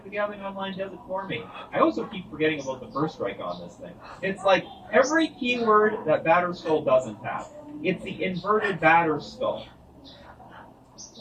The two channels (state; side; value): identical; both; correlation 1.00